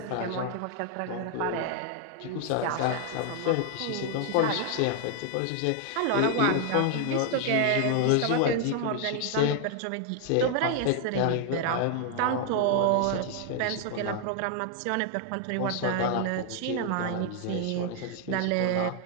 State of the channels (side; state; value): both; different; correlation 0.00